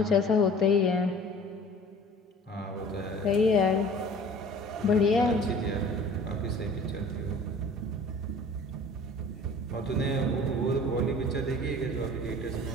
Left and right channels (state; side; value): normal; both; correlation 0.46